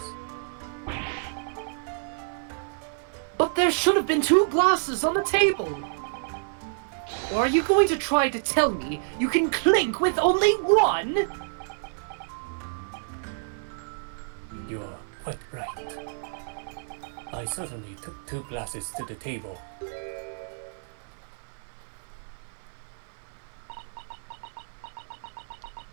But there should have been 2 glasses on the table. Or are you going to try to tell me you can clink with only 1? You are quite right. I certainly took 2 glasses to the table.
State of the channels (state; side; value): silent; left; 56 dB below the other